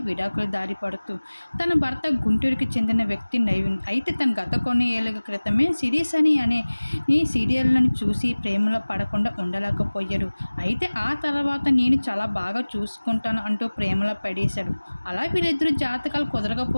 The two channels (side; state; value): both; inverted; correlation -1.00